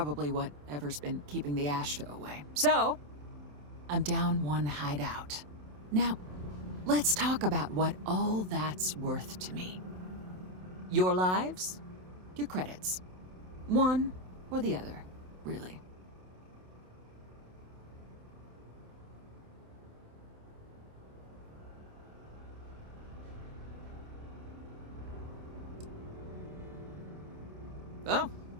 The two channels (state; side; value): late; left; 27 ms